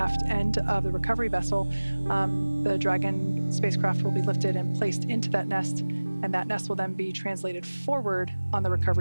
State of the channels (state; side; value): inverted; both; correlation -1.00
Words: end of the recovery vessel, the Dragon spacecraft will be lifted and placed into that nest, and that nest will then be translated forward on the